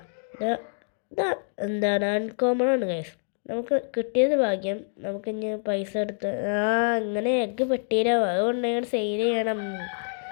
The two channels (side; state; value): right; silent; digital silence